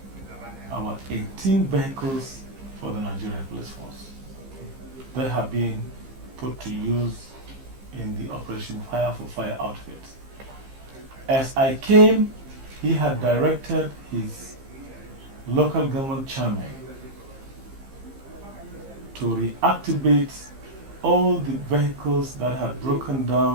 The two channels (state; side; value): late; left; 15 ms